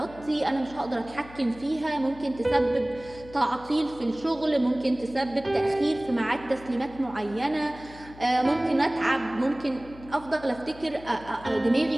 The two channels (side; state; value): left; noise; hum, 19 dB below the sound